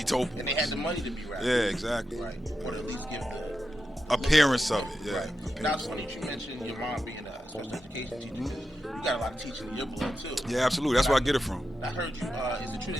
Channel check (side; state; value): both; normal; correlation 0.89